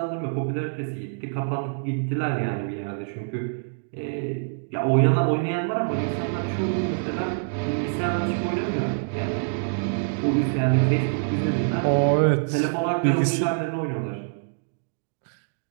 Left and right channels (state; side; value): silent; left; digital silence